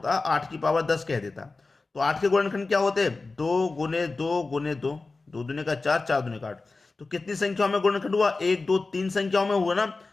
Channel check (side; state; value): right; quieter; 3.7 dB